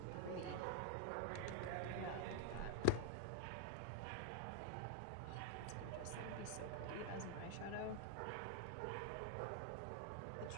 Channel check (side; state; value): both; different; correlation 0.01